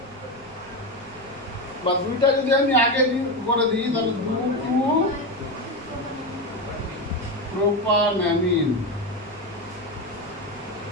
বা দুইটা যদি আমি আগে করে দিই তাহলে 2 2 প্রোপানঅ্যামিন,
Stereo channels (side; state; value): left; noise; rumble, 25 dB below the sound